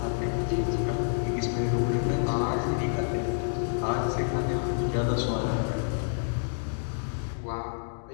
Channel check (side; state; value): right; silent; digital silence